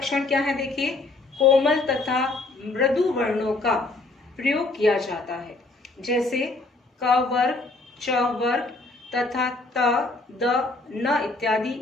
क्या है, देखिए, कोमल तथा मृदु वर्णों का प्रयोग किया जाता है, जैसे क वर्ग, च वर्ग तथा त, द, न इत्यादि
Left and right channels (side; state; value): right; quieter; 3.2 dB